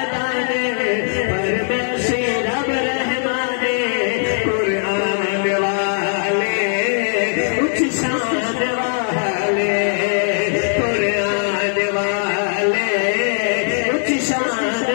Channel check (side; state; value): right; silent; 56 dB below the other